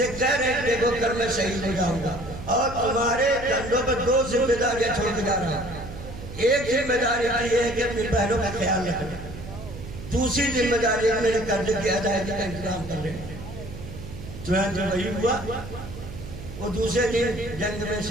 کہہ رہے ہیں دیکھو کل میں شہید ہو جاؤں گا اور تمہارے کندھوں پر 2 ذمہ داریاں چھوڑ کے جا رہا ہوں۔ ایک ذمہ داری یہ ہے کہ اپنی بہنوں کا خیال رکھنا، دوسری ذمہ داری ہے میرے قرضے کی ادائیگی کا انتظام کر رہے ہیں۔ چنانچہ وہی ہوا، وہ دوسرے دن جنگ میں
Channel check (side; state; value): right; noise; hum, 12 dB below the sound